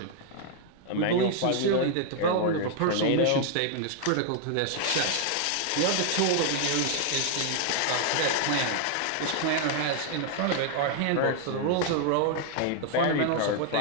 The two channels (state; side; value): different; both; correlation 0.00